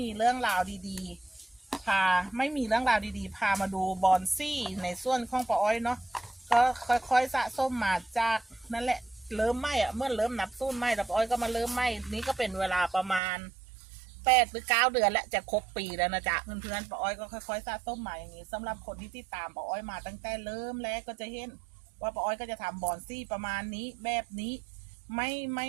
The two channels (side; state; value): left; drops out; at 13.2 s